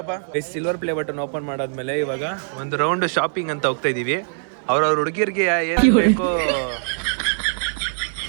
ಸಿಲ್ವರ್ ಪ್ಲೇ ಬಟನ್ ಓಪನ್ ಮಾಡಾದ್ಮೇಲೆ ಇವಾಗ ಒಂದು ರೌಂಡ್ ಶಾಪಿಂಗ್ ಅಂತ ಹೋಗ್ತಾ ಇದೀವಿ. ಅವ್ರವ್ರ ಹುಡುಗಿರ್ಗೆ ಏನ್ ಬೇಕೋ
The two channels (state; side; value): silent; left; digital silence